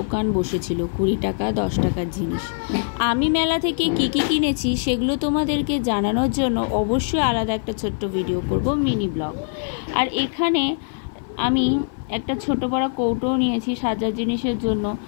বসেছিল, 20 টাকা 10 টাকার জিনিস। আমি মেলা থেকে কী কী কিনেছি সেগুলো তোমাদেরকে জানানোর জন্য অবশ্যই আলাদা একটা ছোট্ট ভিডিও করব, মিনি ব্লগ। আর এখানে আমি একটা ছোট বড় কৌটোও নিয়েছি সাজার জিনিসের জন্য।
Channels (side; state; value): right; silent; 57 dB below the other